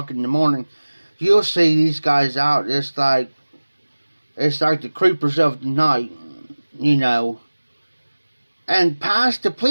in the morning, you'll see these guys out. It's like the creepers of the night, and past the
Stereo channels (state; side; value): inverted; both; correlation -1.00